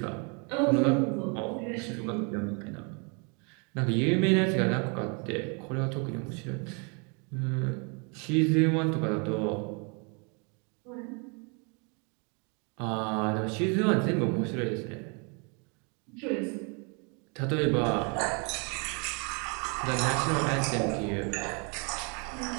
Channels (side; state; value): left; quieter; 34.6 dB